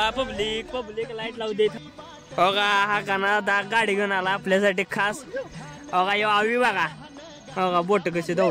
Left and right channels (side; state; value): both; identical; correlation 1.00